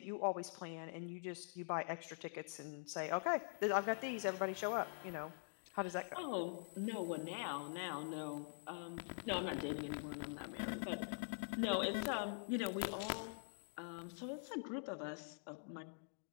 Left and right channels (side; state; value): right; silent; digital silence